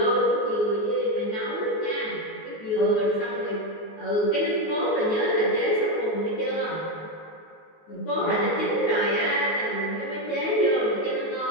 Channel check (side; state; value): right; late; 19 ms